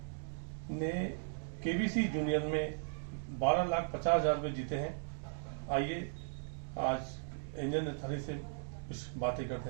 ने केबीसी जूनियर में 12,50,000 रुपये जीते हैं। आइए आज एंजल नथानी से कुछ बातें करते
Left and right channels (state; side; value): silent; left; digital silence